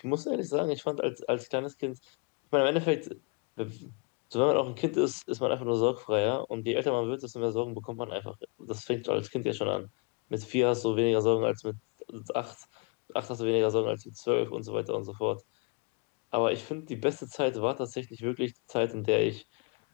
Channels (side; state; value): right; quieter; 30.5 dB